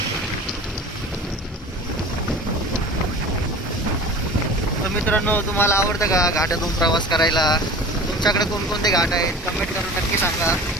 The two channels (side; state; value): both; normal; correlation 0.39